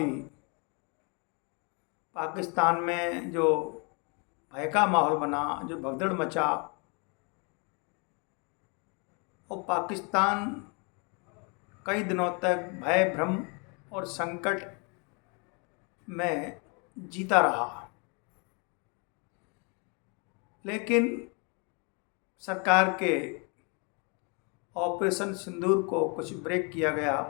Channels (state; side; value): quieter; right; 33.9 dB